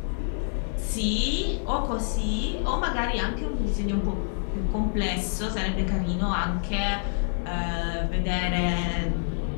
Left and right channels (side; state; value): right; silent; digital silence